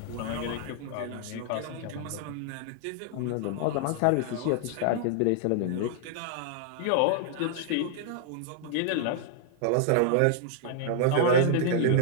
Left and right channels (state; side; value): different; both; correlation -0.01